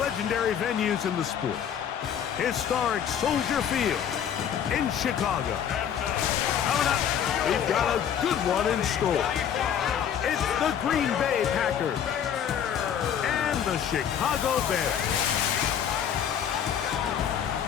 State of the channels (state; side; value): quieter; right; 8.8 dB